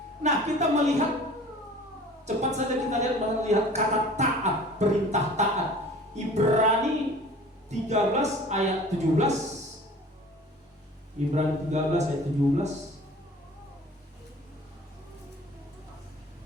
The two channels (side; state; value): both; normal; correlation 0.45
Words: Nah, kita melihat, cepat saja kita melihat kata taat, perintah taat. Ibrani 13 ayat 17. Ibrani 13 ayat 17.